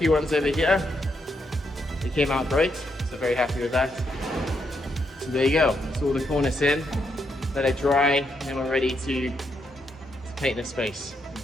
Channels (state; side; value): normal; both; correlation 0.79